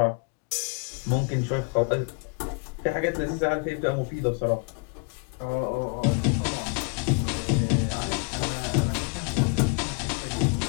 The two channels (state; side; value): quieter; right; 32.4 dB